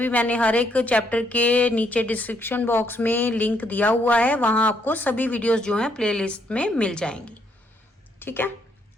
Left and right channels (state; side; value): normal; both; correlation 0.73